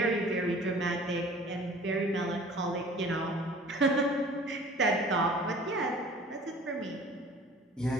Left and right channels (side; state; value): both; normal; correlation 0.47